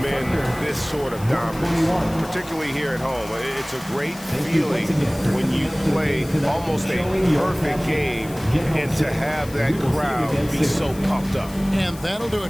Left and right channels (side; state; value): left; noise; hiss, 18 dB below the sound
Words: this sort of dominance, particularly here at home. It's a great feeling when you play almost a perfect game and to have that crowd be so pumped up. And that'll do